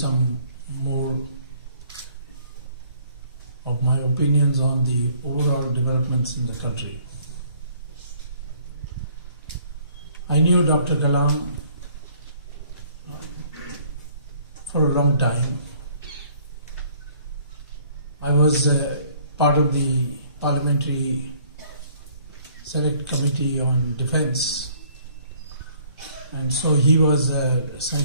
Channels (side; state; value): both; inverted; correlation -0.59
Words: more of my opinions on the overall developments in the country. I knew Dr. Kalam for a long time. I was part of the Parliamentary Select Committee on Defence, and so he was a